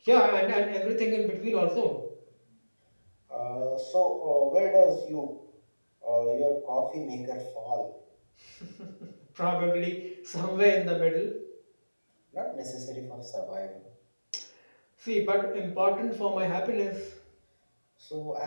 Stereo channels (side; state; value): both; inverted; correlation -1.00